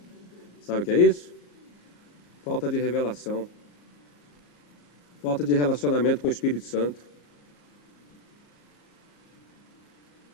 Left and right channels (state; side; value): late; right; 34 ms